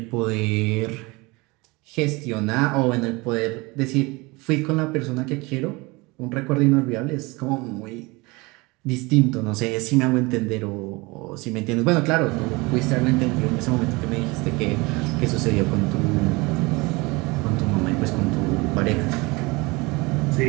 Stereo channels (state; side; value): quieter; left; 24.6 dB